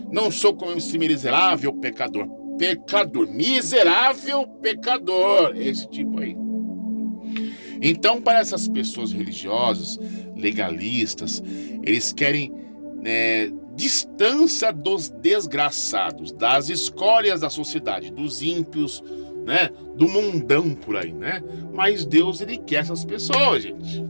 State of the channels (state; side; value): inverted; both; correlation -1.00